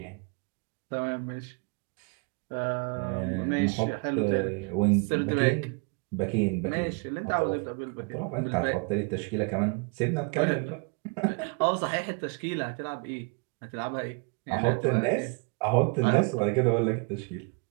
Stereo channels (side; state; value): left; quieter; 31.5 dB